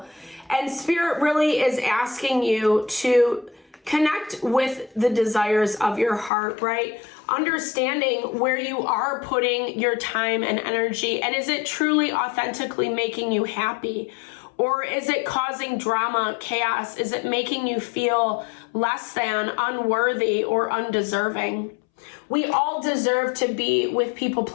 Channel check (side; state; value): right; drops out; at 6.3 s